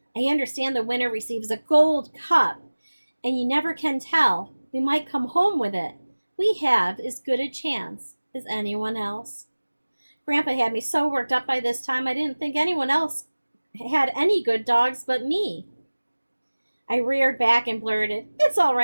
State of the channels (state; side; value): inverted; both; correlation -1.00